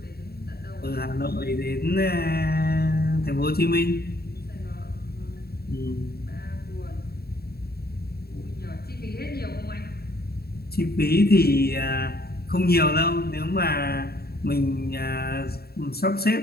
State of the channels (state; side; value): late; right; 0.45 ms